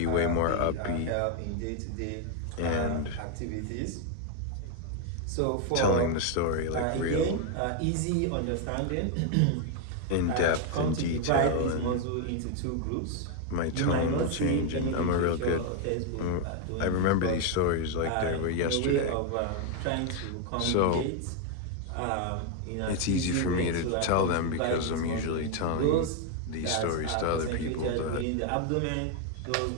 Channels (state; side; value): different; both; correlation 0.01